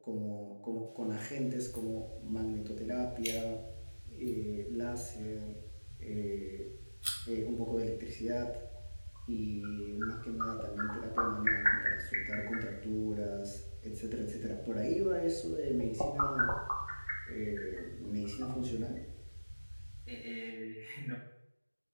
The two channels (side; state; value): both; inverted; correlation -1.00